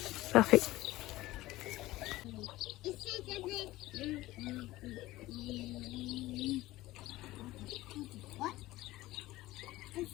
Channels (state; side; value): quieter; right; 17.5 dB